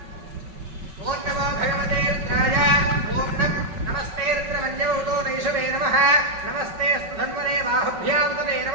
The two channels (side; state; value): left; late; 5.4 ms